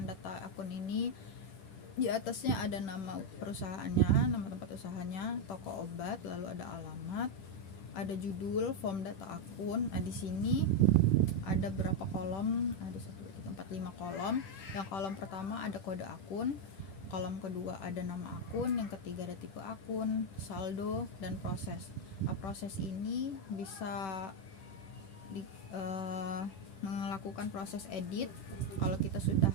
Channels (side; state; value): right; late; 10 ms